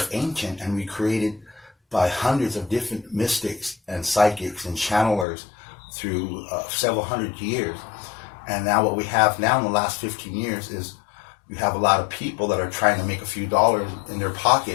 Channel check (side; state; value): right; drops out; at 5.2 s